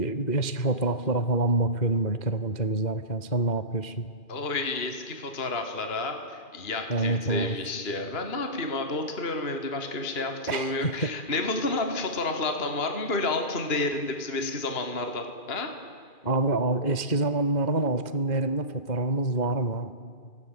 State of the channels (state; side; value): late; right; 2.4 ms